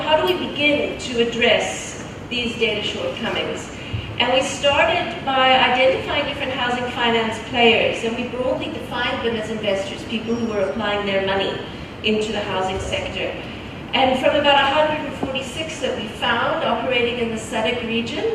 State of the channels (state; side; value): identical; both; correlation 1.00